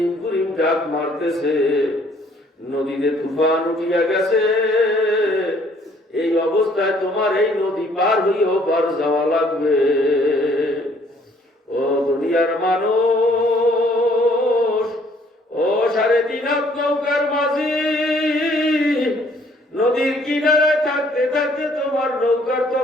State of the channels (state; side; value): normal; both; correlation 0.62